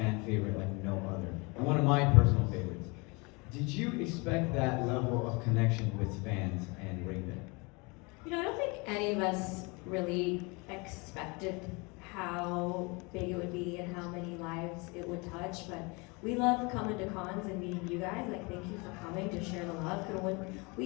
favorite like no other. And one of my personal favorites. Did you expect that level of connection with fans and Raven? You know, I don't think any of us really expected how big it would be and how many lives it would touch, but we love coming to cons and meeting you guys. Like, thank you for coming to share the love. Because when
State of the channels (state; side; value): quieter; right; 28.4 dB